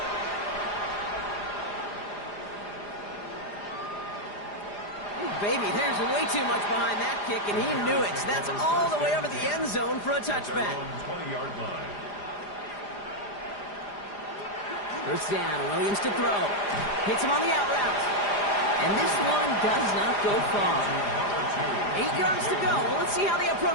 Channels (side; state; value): right; late; 4.9 ms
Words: Ooh, baby, there's way too much behind that kick, and he knew it. That's all the way over the end zone for a touchback. 20-yard line. First down, Williams to throw. Hits him on the out route. And this one does not go far. 8 yards to go. Let's see how they